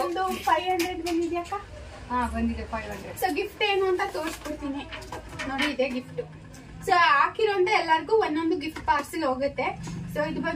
500 ಬಂದಿದ್ಯಾಕ? ಬಂದಿದೆ 500. ಸೊ ಗಿಫ್ಟ್ ಏನು ಅಂತ ತೋರಿಸ್ಕೊಡ್ತೀನಿ ನೋಡಿ, ಇದೆ ಗಿಫ್ಟ್. ಸೊ ಹಾಕಿರೋಂತ ಎಲ್ಲರಿಗೂ ಒಂದೊಂದು ಗಿಫ್ಟ್ ಪಾರ್ಸೆಲ್ ಹೋಗುತ್ತೆ. ಸೊ ಇದು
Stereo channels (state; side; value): identical; both; correlation 1.00